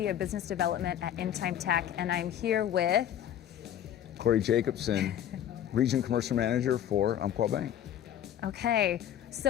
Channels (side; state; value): right; quieter; 10.6 dB